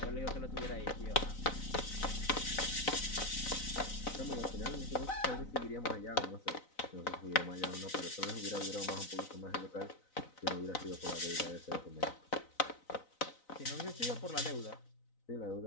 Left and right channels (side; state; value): right; late; 4.0 ms